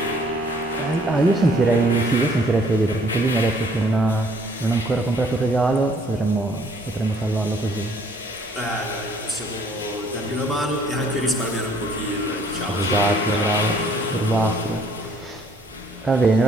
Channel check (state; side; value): normal; both; correlation 0.61